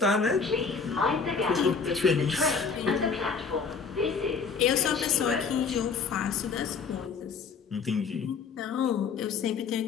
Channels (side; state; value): right; quieter; 5.4 dB